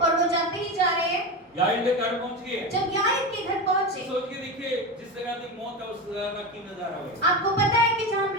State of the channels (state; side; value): normal; both; correlation 0.20